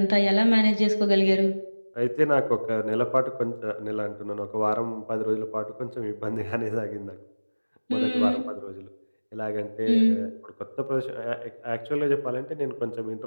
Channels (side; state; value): both; inverted; correlation -1.00